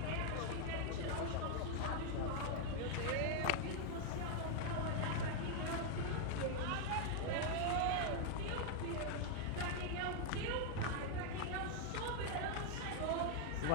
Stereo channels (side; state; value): both; different; correlation 0.00